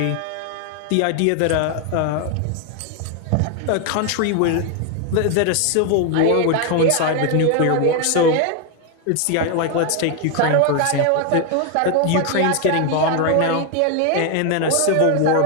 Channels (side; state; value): both; different; correlation 0.01